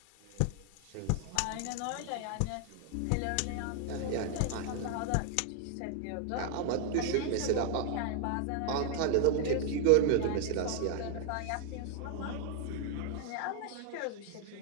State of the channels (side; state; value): both; different; correlation 0.00